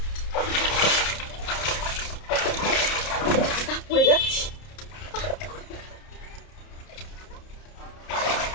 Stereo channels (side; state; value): right; late; 30 ms